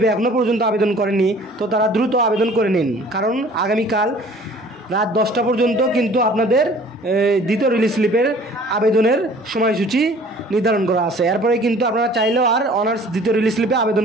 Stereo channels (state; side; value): normal; both; correlation 0.50